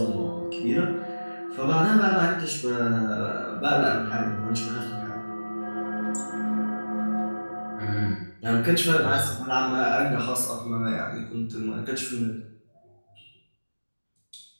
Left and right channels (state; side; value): inverted; both; correlation -1.00